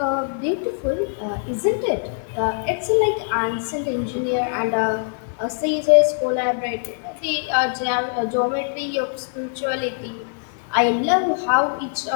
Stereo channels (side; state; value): right; silent; digital silence